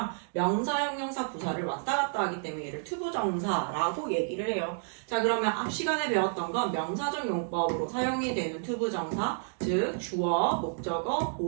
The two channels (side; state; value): left; silent; digital silence